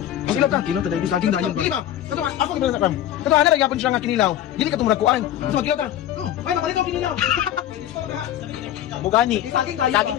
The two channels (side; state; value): right; quieter; 11.8 dB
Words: Kinilaw ka. Kilo taday saging dayon ba? Dili ba? Kato, ako gibala sa kam. Kato, ana gyapon siya nga kinilaw. Dili ka tumulakuan. So, magkilaw ka. Oh, ay, mapalit ko kinilaw. Bugani. Saging dayon. Saging